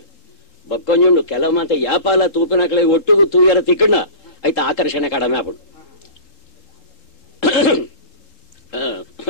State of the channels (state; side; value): late; right; 3.8 ms